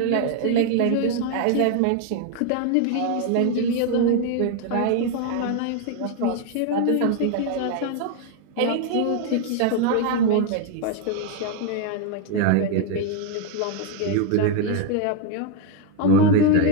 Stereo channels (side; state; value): both; different; correlation 0.01